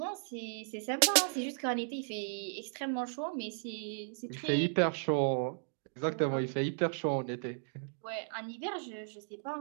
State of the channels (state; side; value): silent; left; digital silence